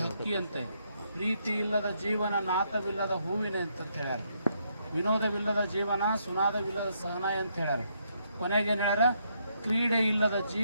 ಹಕ್ಕಿ ಅಂತೆ, ಪ್ರೀತಿ ಇಲ್ಲದ ಜೀವನ ನಾತವಿಲ್ಲದ ಹೂವಿನ ಅಂತ ಹೇಳ್ಯಾರ, ವಿನೋದವಿಲ್ಲದ ಜೀವನ ಸುನಾದವಿಲ್ಲದ ಸಹನಾಯ ಅಂತ ಹೇಳ್ಯಾರ. ಕೊನೆಗೇನು ಹೇಳ್ಯಾರ, ಕ್ರೀಡೆ ಇಲ್ಲದ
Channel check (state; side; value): inverted; both; correlation -0.75